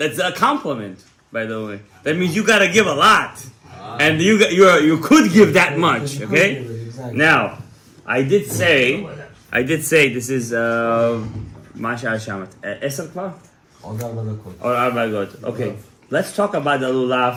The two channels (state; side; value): identical; both; correlation 1.00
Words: a compliment. By the way, that means you gotta give a lot, and you could give that much. Okay. Now, I did say this is Masha Hashamat. Esel kvar? Or 4 דקות. Okay. Let's talk about the